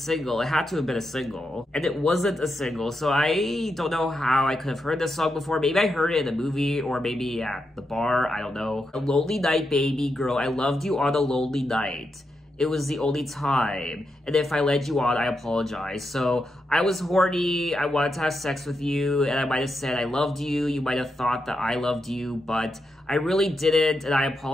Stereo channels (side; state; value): both; normal; correlation 0.85